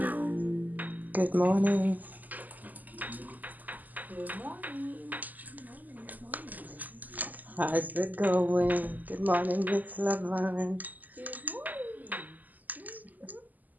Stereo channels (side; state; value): left; late; 0.082 ms